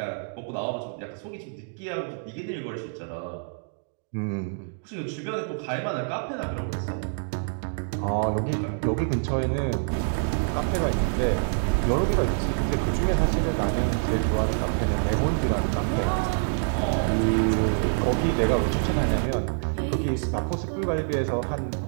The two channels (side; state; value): left; silent; digital silence